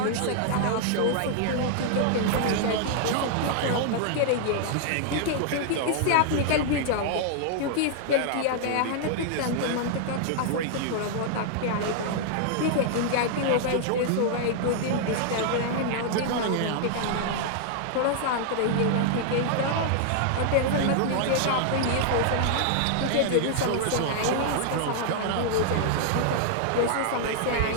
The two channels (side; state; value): both; different; correlation -0.01